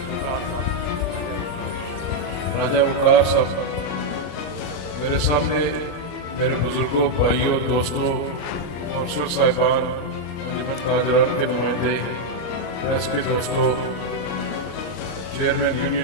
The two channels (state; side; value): late; right; 34 ms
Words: राजा वकार साहब, मेरे सामने मेरे बुजुर्गों, भाइयों, दोस्तों, कौंसलर साहिबान, अंजुमन ताजरान के नुमाइंदे, प्रेस के दोस्तों, चेयरमैन